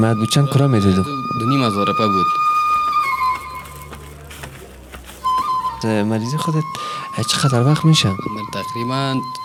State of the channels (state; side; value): identical; both; correlation 1.00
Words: بود. چند کرا میدادو؟ 2,500 روپیه بود. مریضی خودت چقدر وقت میشه؟ من تقریبا